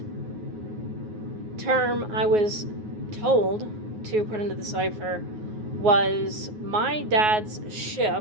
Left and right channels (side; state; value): left; late; 9.4 ms